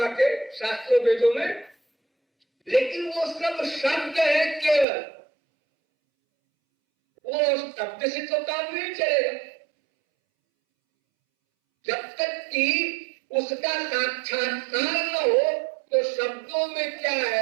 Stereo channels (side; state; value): left; drops out; at 4.9 s